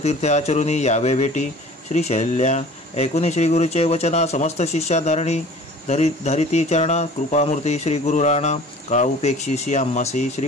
आचरुनी, यावे भेटी श्री शैल्या। ऐकुनी श्री गुरुचे वचना, समस्त शिष्या धारणी। धरिती चरणा, कृपामूर्ती श्री गुरु राणा। का उपेक्षीसी आम्हासी, श्री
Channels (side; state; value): both; normal; correlation 0.45